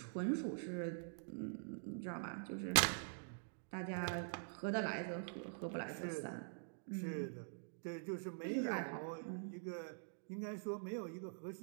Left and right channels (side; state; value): left; silent; digital silence